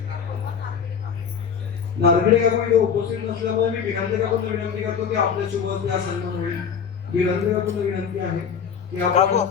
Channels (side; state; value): right; quieter; 7.1 dB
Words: नारखेडे काकू इथे उपस्थित नसल्यामुळे मी बिरांदे काकूंना विनंती करतो की आपल्या शुभ हस्ते हा सन्मान होईल. बिरांदे काकूंना विनंती आहे की आपण